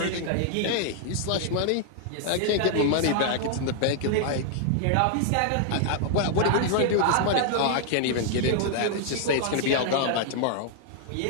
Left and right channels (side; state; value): both; different; correlation -0.01